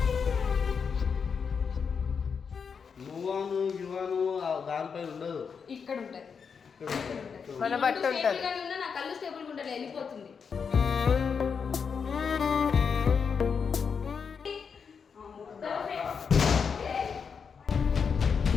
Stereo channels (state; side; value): quieter; right; 6.1 dB